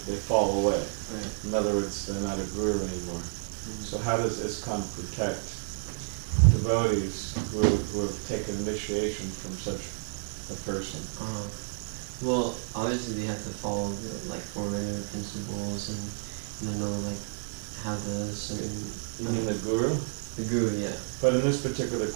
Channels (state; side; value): silent; left; digital silence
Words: fall away? Right. In other words, they're not a guru anymore. Mm-hmm. So how does ISKCON protect devotees who have taken initiation from such a person? Well, obviously they have to follow the like four-regular principles and know like how the certain. You mean the guru? The guru, yeah. But in this particular